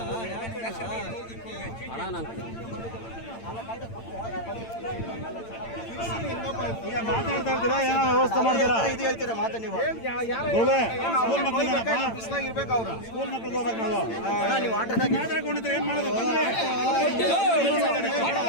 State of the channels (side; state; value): right; late; 8.9 ms